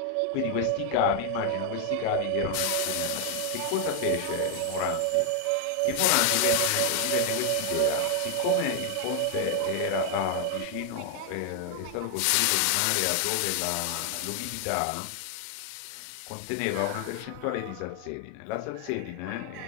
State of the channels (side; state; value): both; different; correlation 0.00